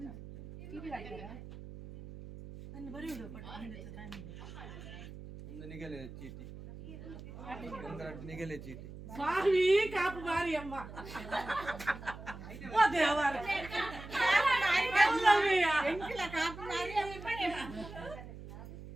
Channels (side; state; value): right; noise; hum, 13 dB below the sound